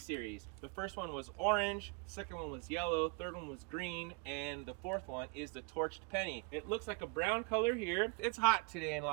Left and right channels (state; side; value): quieter; left; 31.4 dB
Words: series. The first one was orange, the second one was yellow, third one was green, and the fourth one is the torched penny. It looks like a brown color here. It's hot today in